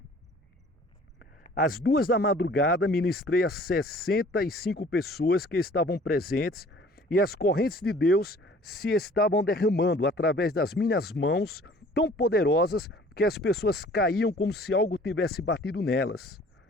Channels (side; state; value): both; normal; correlation 0.51